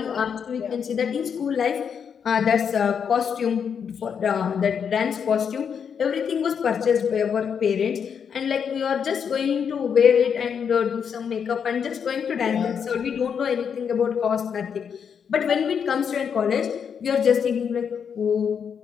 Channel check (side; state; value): right; quieter; 7.2 dB